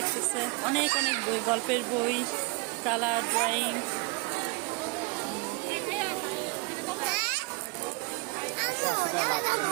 অনেক অনেক বই, গল্পের বই, কালার ড্রয়িং।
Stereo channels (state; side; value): quieter; left; 28.3 dB